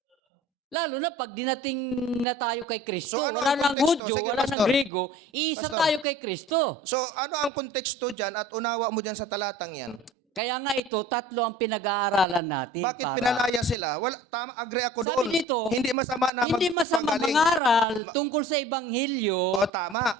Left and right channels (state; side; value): normal; both; correlation 0.44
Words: Lalo na pag dinating na tayo kay Kristo, So, ano wala ang nang konteksto? Hudyo, Sige, wala Pastor. nang Grego, iisa Pastor. tayo kay Kristo. So, ano ang konteksto dyan at unawa mo dyan sa talatang yan? Kaya nga ito, tatlo ang pinag-aaralan natin. Bakit pinalaya sila? Wala, tama, agree ako Sabi doon. dito, Hindi masama na hindi masama magpagaling. mangaral tungkol sa Ebanghelyo. O,